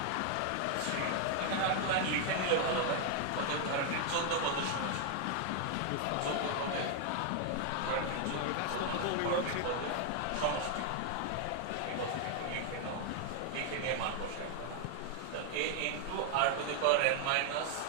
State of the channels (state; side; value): different; both; correlation 0.00